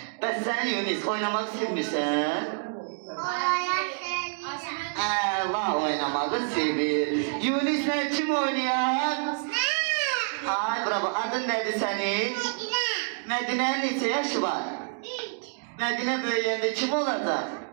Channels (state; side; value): silent; left; digital silence